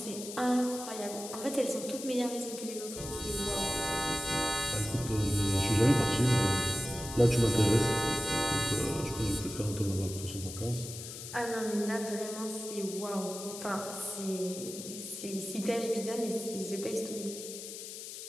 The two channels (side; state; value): left; noise; hiss, 10 dB below the sound